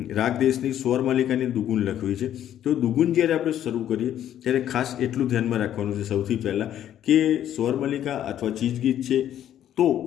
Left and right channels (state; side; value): quieter; right; 11.1 dB